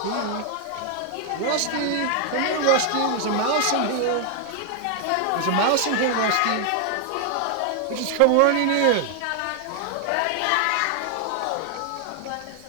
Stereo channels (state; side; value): different; both; correlation 0.00